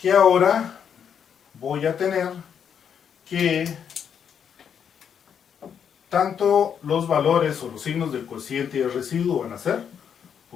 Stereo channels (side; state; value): right; quieter; 7.8 dB